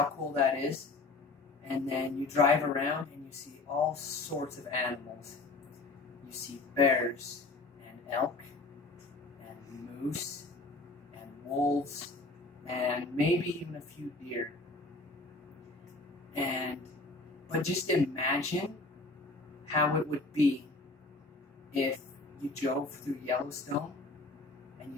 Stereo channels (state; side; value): quieter; right; 3.4 dB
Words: cool that is. And then you drive around and you see all sorts of animals. You see bears and elk and moose and wolves and maybe even a few deer. But just imagine how it would be if you drove through Yellowstone and